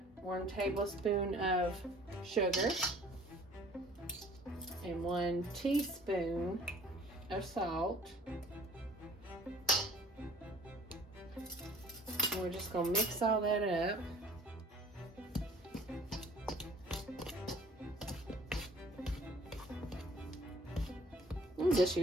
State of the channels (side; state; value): both; normal; correlation 0.53